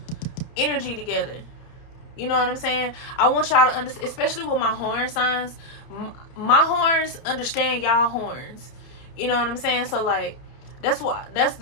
energy together. You know what I'm saying? I want y'all to understand, especially with my horn signs. My horns understand y'all horns. You know what I'm saying? So, like, that's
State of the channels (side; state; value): right; late; 30 ms